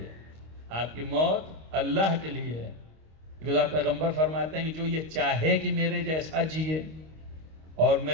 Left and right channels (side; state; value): left; late; 25 ms